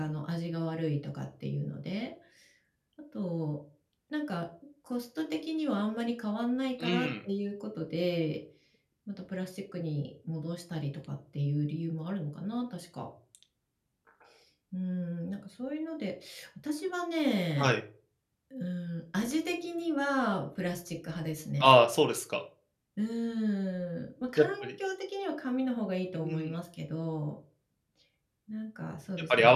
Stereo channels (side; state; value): both; identical; correlation 1.00